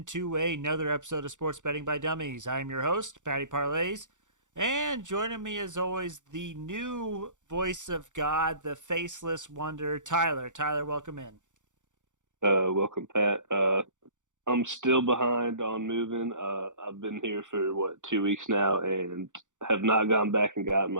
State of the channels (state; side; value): late; left; 0.86 ms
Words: another episode of Sports Betting by Dummies. I'm your host, Patty Parlays, and joining me, as always, the new voice of God, the faceless wonder, Tyler. Tyler, welcome in. Welcome, Pat. I'm still behind on moving. I've been here for 2 weeks now, and have not gone back and gotten